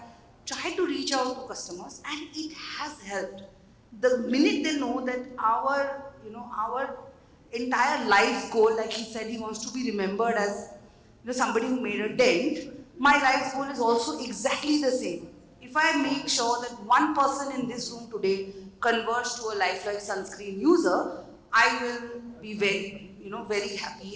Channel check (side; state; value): both; identical; correlation 1.00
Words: tried to reach out to customers, and it has helped. The minute they know that our entire life's goal, like he said, he wants to be remembered as somebody who made a dent. My life's goal is also exactly the same. If I make sure that one person in this room today converts to a lifelike sunscreen user, I will be very